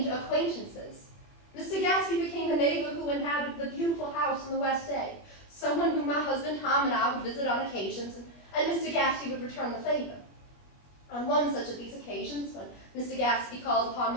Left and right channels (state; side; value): late; right; 21 ms